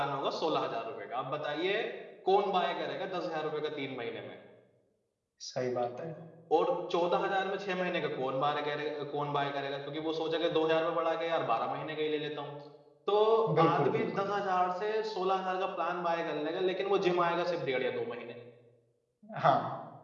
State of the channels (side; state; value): both; identical; correlation 1.00